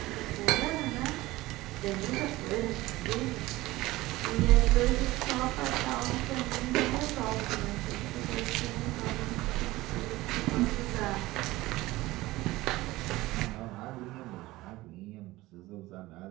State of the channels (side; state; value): left; quieter; 18.6 dB